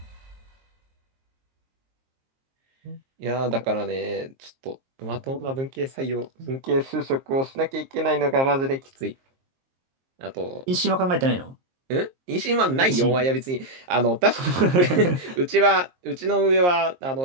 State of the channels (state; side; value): late; left; 23 ms